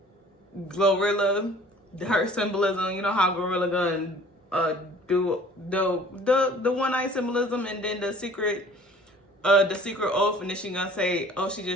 Glorilla. Her symbolism, you know how Gorilla Gun do the one-eye symbolism, and then the secret oath, and then she gonna say, oh, she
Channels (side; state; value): both; normal; correlation 0.50